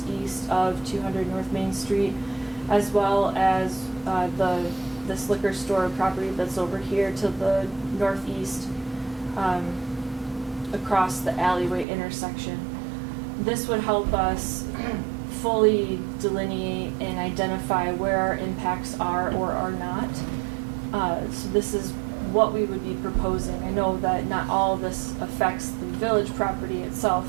east of 200 North Main Street, as well as this liquor store property that's over here to the northeast across the alleyway intersection. This would help us fully delineate and identify where our impacts are or are not. So this is what we would be proposing. I know that not all of this affects the village property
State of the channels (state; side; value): drops out; left; at 11.9 s